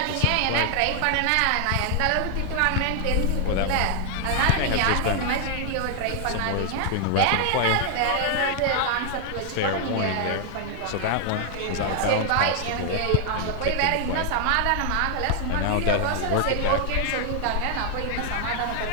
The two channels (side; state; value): both; different; correlation 0.00